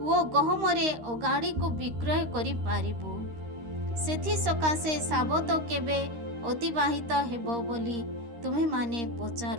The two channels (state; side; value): late; left; 13 ms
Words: ଓ ଗହମରେ ଅଗାଡ଼ିକୁ ବିକ୍ରୟ କରିପାରିବୁ। ସେଥିସକାଶେ ସାବତ କେବେ ଅତିବାହିତ ହେବ ବୋଲି ତୁମେମାନେ